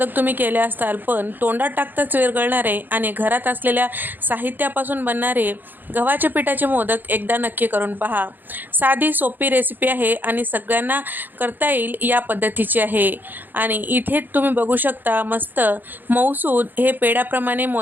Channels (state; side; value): late; left; 0.090 ms